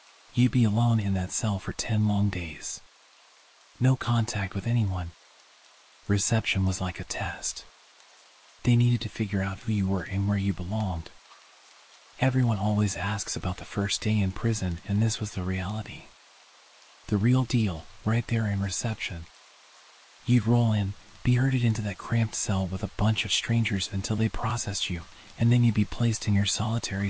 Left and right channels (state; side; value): identical; both; correlation 1.00